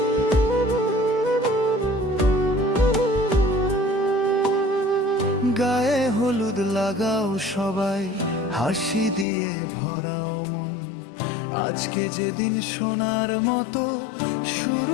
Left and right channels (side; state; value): right; drops out; at 9.2 s